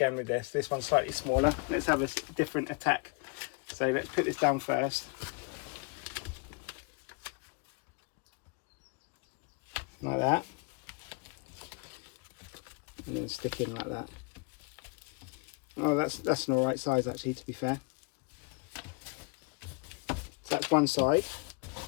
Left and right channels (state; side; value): quieter; right; 33.1 dB